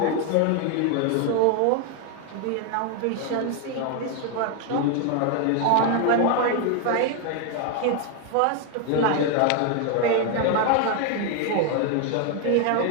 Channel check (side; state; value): both; different; correlation 0.00